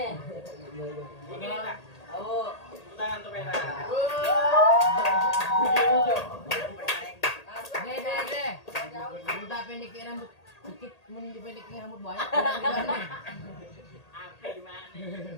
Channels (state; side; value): late; right; 1.8 ms